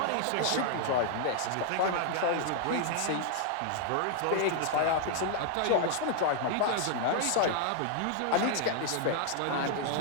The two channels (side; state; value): both; different; correlation 0.00